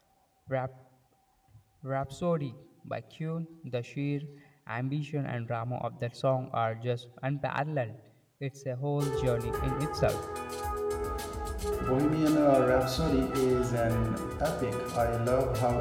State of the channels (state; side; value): identical; both; correlation 1.00